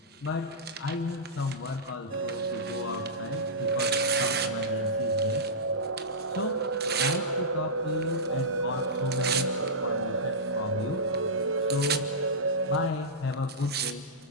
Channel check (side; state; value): both; normal; correlation -0.15